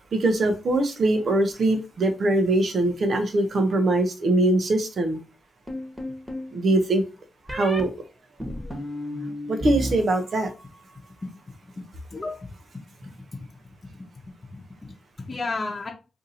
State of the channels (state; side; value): normal; both; correlation 0.73